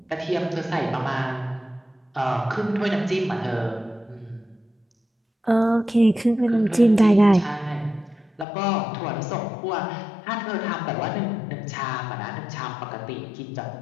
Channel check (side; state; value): right; drops out; at 8.5 s